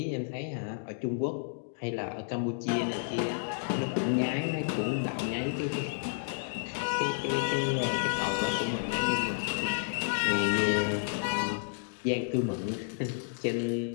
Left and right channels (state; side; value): silent; right; digital silence